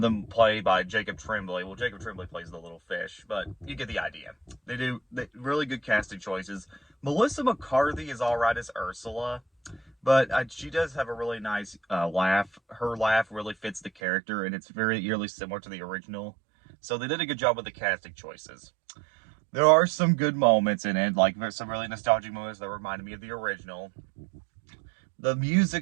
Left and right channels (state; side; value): drops out; left; at 13.9 s